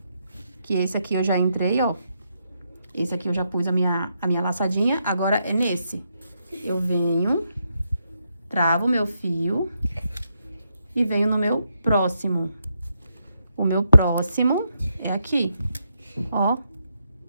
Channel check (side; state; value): both; inverted; correlation -0.80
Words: Que esse aqui eu já entrei, ó. Esse aqui eu já pus a minha laçadinha. Agora é nesse. Eu venho, travo o meu fio e venho no meu próximo. O meu próximo é aqui, ó.